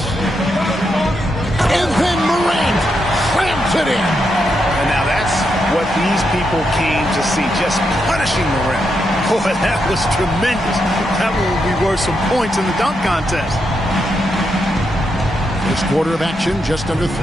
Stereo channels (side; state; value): both; normal; correlation 0.82